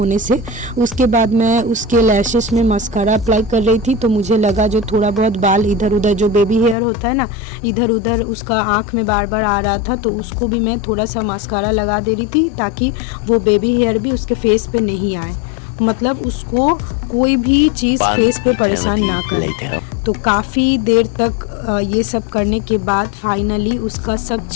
से। उसके बाद मैं उसके लैशेस में मस्कारा अप्लाई कर रही थी, तो मुझे लगा जो थोड़ा बहुत बाल इधर उधर, जो बेबी हेयर होता है ना, इधर उधर उसका आँख में बार बार आ रहा था, तो उसको भी मैं थोड़ा सा मस्कारा लगा दे रही थी ताकि वो बेबी हेयर भी उसके फेस पे नहीं आए, मतलब उसको कोई भी चीज़ फेस पे परेशान ना करे। तो काफ़ी देर तक ये सब करने के बाद फाइनली उसका सब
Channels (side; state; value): right; drops out; at 6.8 s